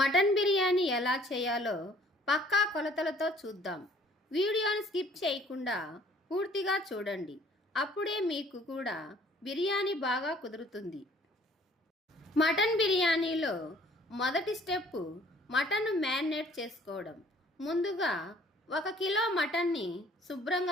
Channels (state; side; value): normal; both; correlation 0.57